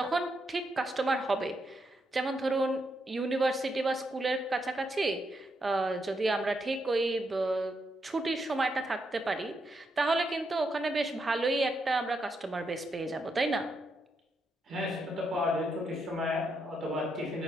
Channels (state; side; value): normal; both; correlation 0.81